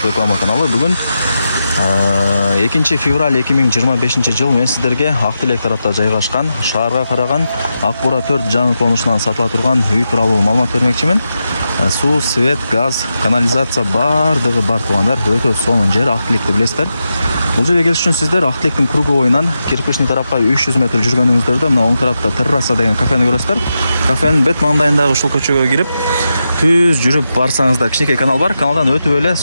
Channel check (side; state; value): both; inverted; correlation -0.89